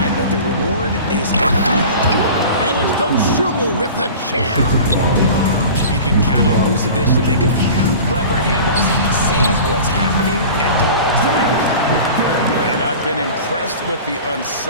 but the reward is... And it's Dosunmu with the jam. You can count on Vucevic to make a few clever handoffs. He sees what's happening at all times. And I've been impressed with the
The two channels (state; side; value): inverted; both; correlation -0.38